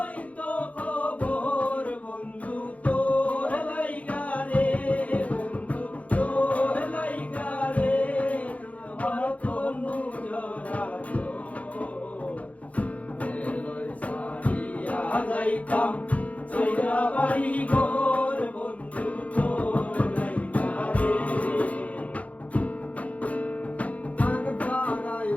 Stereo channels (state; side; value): late; right; 0.067 ms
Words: তো খবর বন্ধু তোর লাইগা রে বন্ধু তোর লাইগা রে আমার তনু জরা এলই সারিয়া যাইতাম চইরা বাড়ি ঘর বন্ধু তোর লাইগা রে গান বাড়াই